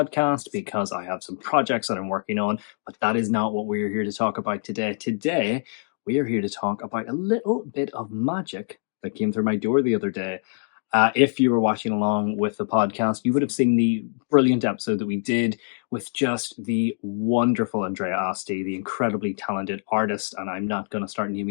because I have some projects that I'm working on, but that is not what we're here to talk about today. Today, we are here to talk about a little bit of magic that came through my door the other day. If you were watching along with the podcast, you would have seen the brilliant episode that we did with just the wonderful Andrea Aste, the incredibly talented artist. And I'm not going to start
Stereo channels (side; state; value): right; silent; digital silence